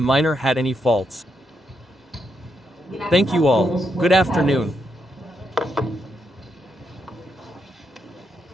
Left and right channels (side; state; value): both; normal; correlation 0.81